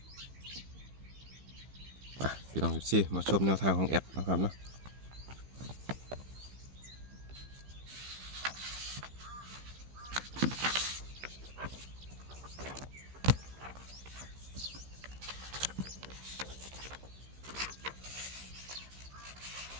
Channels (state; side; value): late; left; 15 ms